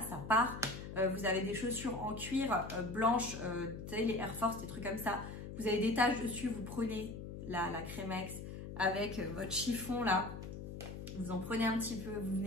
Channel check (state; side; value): noise; left; hum, 9 dB below the sound